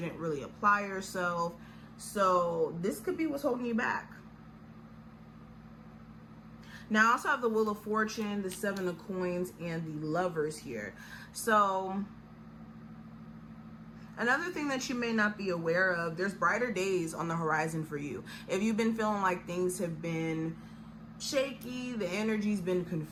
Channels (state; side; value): identical; both; correlation 1.00